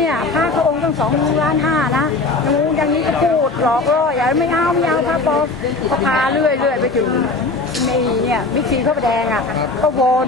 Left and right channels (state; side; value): quieter; right; 3.5 dB